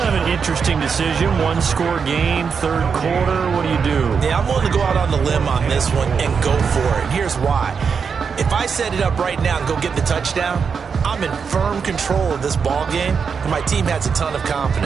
of an interesting decision. One-score game, third quarter. What do you do? Yeah, I'm willing to go out on the limb on this one and go for it. Here's why. If I set it up right now and go get the touchdown, I'm in firm control of this ball game, and my team has a ton of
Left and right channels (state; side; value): quieter; left; 6.0 dB